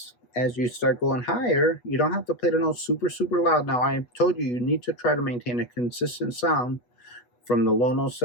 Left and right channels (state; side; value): late; right; 8.2 ms